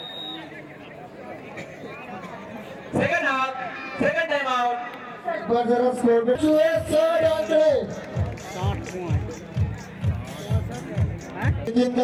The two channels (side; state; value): both; identical; correlation 1.00